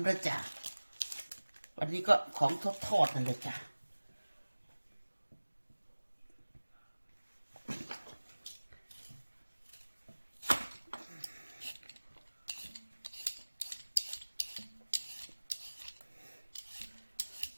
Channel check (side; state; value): both; inverted; correlation -1.00